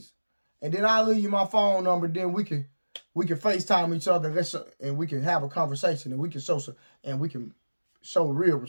And then I'll leave you my phone number, then we can FaceTime each other and we can have a conversation and we can show real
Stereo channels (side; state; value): both; inverted; correlation -1.00